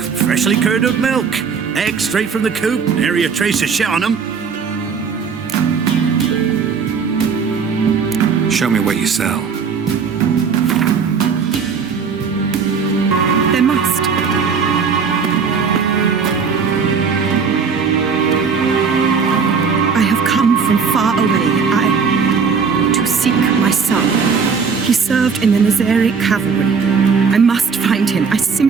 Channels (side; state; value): left; quieter; 5.8 dB